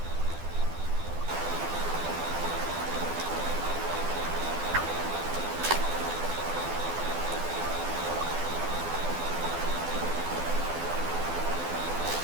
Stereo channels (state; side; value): late; left; 12 ms